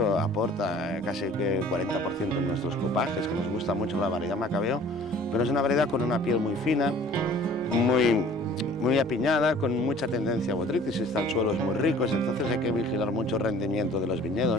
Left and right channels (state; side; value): normal; both; correlation 0.50